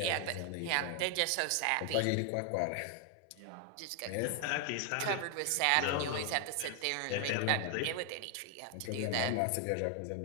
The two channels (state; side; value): different; both; correlation 0.00